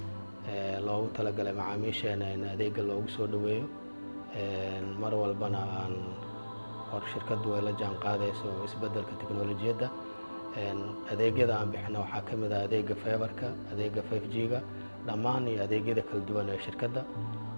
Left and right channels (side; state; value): both; inverted; correlation -1.00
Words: loogu talagalay macaamiisheena in adeegga loogu soo dhaweeyo mar walbana aan hor shirkadu ay la jaan qaadayso isbeddelka tiknoolajiyadda adeegyada aan bixino waxaa ka mid ah adeegga fiberka adeegga 5G-ga dhammaan iyo adeegyada kala duwan ee shirkadda